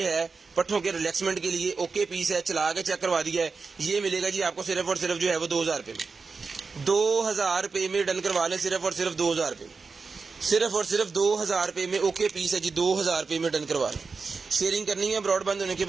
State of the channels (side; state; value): left; quieter; 4.6 dB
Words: है पट्ठों के रिलैक्समेंट के लिए। ओके पीस है, चला के चेक करवा दिया है। ये मिलेगा जी आपको सिर्फ और सिर्फ जो है वो 2000 रुपये में। 2000 रुपये में डन करवा लें, सिर्फ और सिर्फ 2000 रुपये में, सिर्फ और सिर्फ 2000 रुपये में। ओके पीस है जी, 2000 रुपये में डन करवा लें। शेयरिंग करनी है, ब्रॉडबैंड होने के